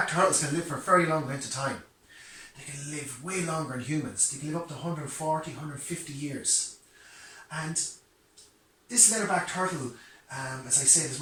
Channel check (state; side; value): identical; both; correlation 1.00